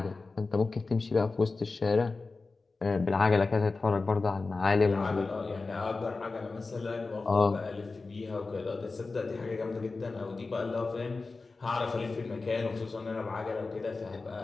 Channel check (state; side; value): quieter; right; 3.9 dB